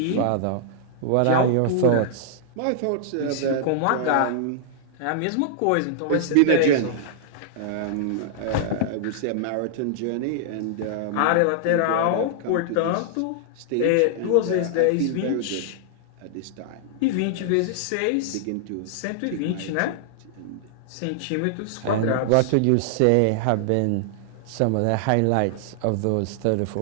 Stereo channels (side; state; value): both; different; correlation -0.01